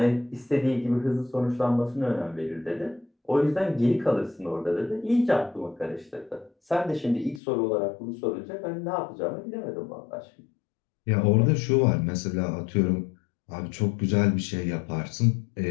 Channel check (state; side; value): drops out; right; at 7.4 s